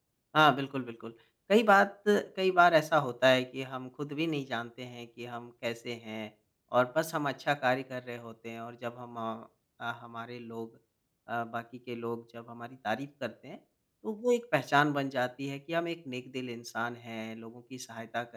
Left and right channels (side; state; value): both; identical; correlation 1.00